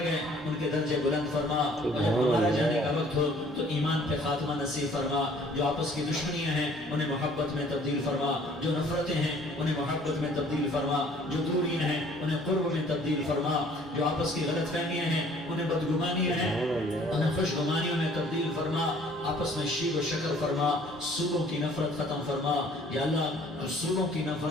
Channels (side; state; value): both; normal; correlation 0.56